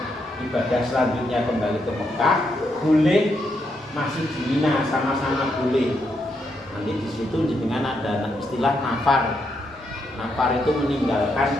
ibadah selanjutnya kembali ke Mekah, boleh masih di Mina, sama-sama boleh. Nanti di situ dengan ada istilah nafar. Nafar itu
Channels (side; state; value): both; normal; correlation 0.79